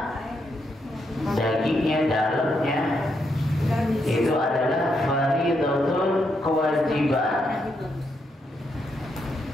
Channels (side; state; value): both; normal; correlation 0.79